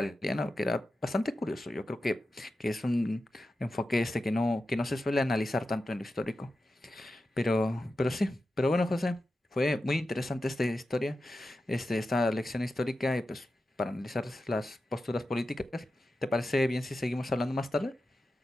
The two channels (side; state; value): both; normal; correlation 0.92